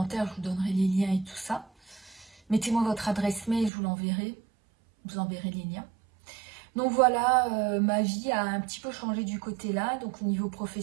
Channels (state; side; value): drops out; left; at 3.7 s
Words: je vous donnerai les liens et tout ça. Mettez-moi votre adresse mail, je vous l'enverrai. Je vous enverrai les liens. Donc voilà, ma vie a un petit peu changé du côté là. Donc au niveau